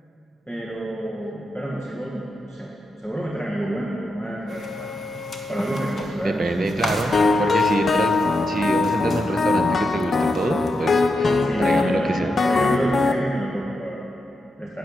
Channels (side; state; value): both; normal; correlation 0.86